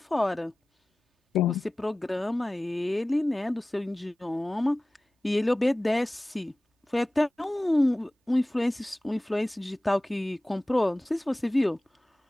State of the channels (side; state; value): both; normal; correlation 0.97